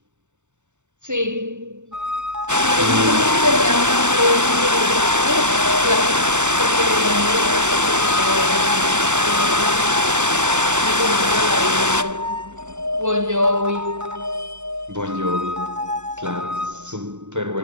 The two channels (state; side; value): late; left; 0.84 ms